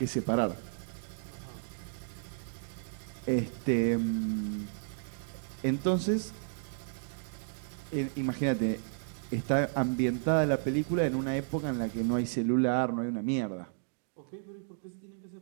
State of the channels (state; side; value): silent; left; digital silence